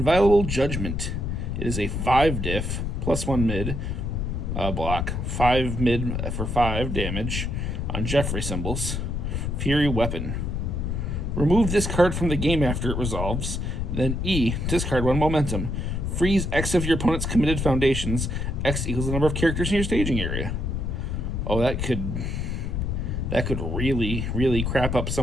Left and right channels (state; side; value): noise; left; rumble, 1 dB below the sound